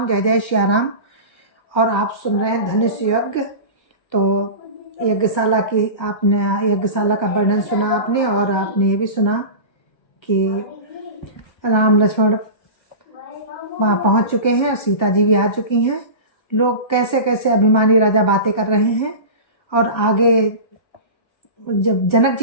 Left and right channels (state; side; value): late; right; 1.3 ms